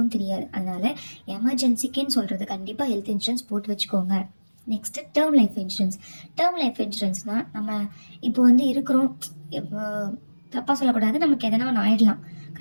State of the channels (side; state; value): both; inverted; correlation -1.00